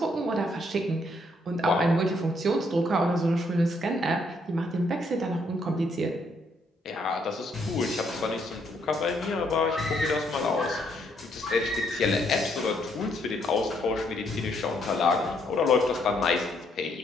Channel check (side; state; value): both; normal; correlation 0.72